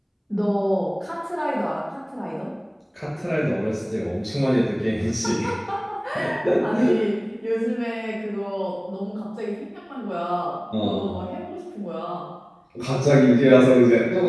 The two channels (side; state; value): both; identical; correlation 1.00